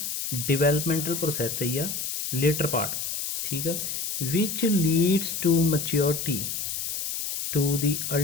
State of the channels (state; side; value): noise; left; hiss, 3 dB below the sound